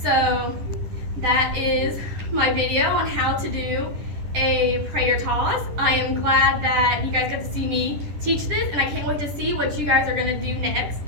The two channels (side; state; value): left; late; 10 ms